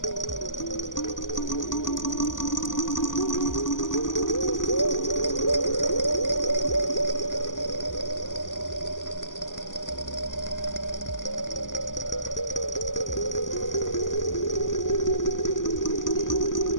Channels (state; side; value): late; right; 0.88 ms